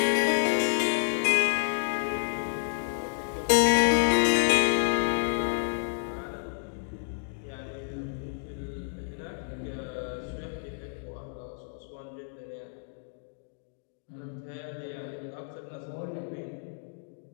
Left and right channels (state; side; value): silent; right; digital silence